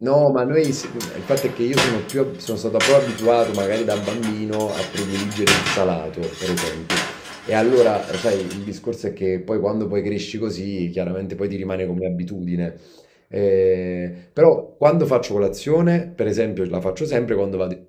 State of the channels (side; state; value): both; identical; correlation 1.00